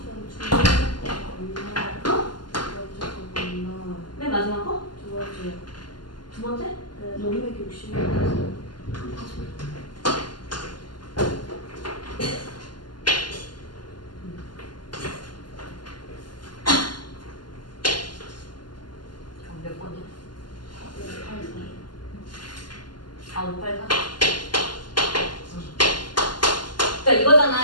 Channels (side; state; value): right; late; 0.71 ms